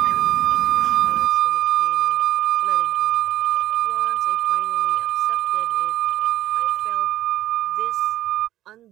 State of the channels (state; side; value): quieter; left; 14.1 dB